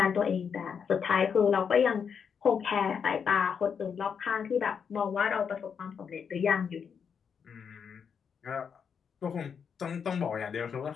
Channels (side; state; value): right; quieter; 6.8 dB